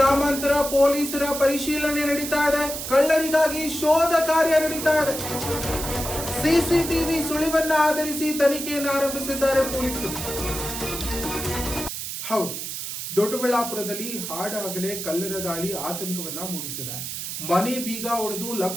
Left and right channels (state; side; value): noise; right; hiss, 6 dB below the sound